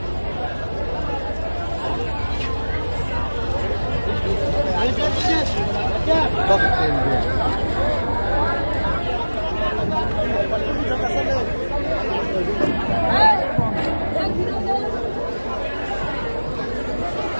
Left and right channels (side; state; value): both; inverted; correlation -1.00